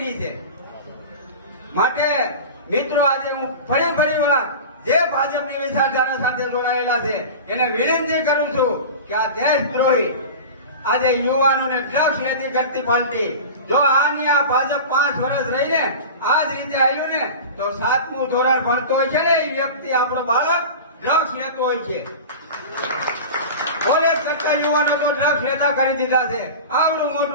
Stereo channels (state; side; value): inverted; both; correlation -0.32